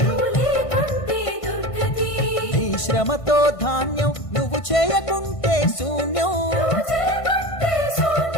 నీ శ్రమతో ధాన్యం, నువ్వు చేయకుంటే శూన్యం.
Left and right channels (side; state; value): right; late; 1.5 ms